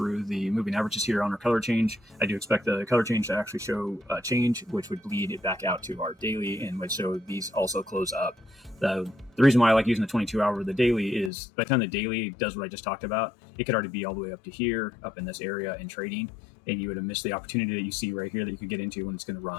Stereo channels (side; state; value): right; drops out; at 11.3 s